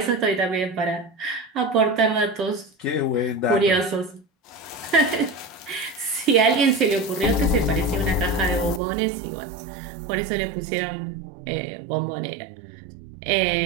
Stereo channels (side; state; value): left; drops out; at 8.8 s